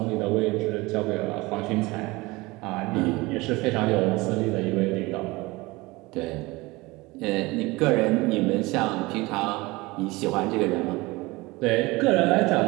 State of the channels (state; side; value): quieter; left; 22.3 dB